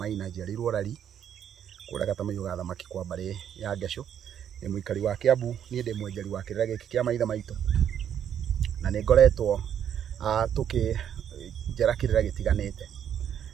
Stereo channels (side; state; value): left; quieter; 9.3 dB